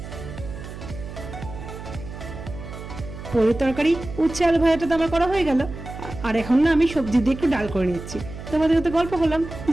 পনির তরকারি উচ্ছে আলু ভাজাটা তো আমার করা হয়ে গেল। আর এখন না আমি সবজি দিয়ে একটু ডাল করে নিচ্ছি। তোমাদের সাথে গল্প করলাম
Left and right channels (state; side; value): noise; right; hum, 11 dB below the sound